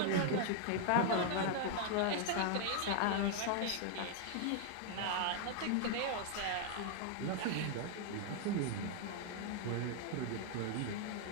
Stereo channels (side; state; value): both; different; correlation 0.00